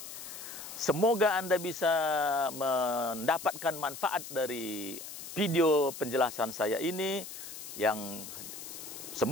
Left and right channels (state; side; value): noise; left; hiss, 11 dB below the sound